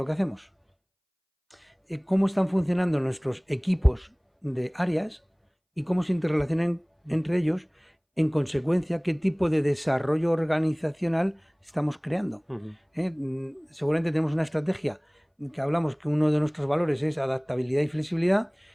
que hacemos, cómo están funcionando nuestros equipos de áreas y cómo se interrelacionan entre ellos, en consecuencia, qué tipo de desarrollo organizacional estamos creando. Seguramente tenemos una estrategia que hablamos que uno de nuestros valores es adaptabilidad y flexibilidad,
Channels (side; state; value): both; identical; correlation 1.00